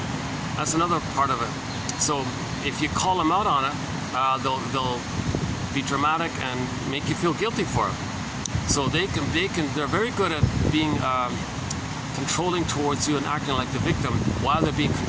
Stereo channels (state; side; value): identical; both; correlation 1.00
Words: That's another part of it. So if you call them out on it, they'll be dramatic and make you feel guilty for it. So they're very good at being controlling towards you and acting like the victim while they're being